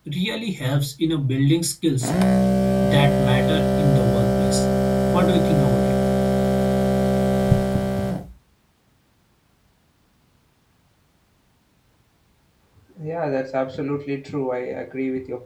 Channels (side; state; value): both; identical; correlation 1.00